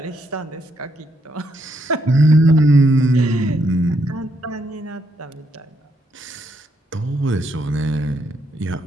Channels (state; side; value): normal; both; correlation 0.76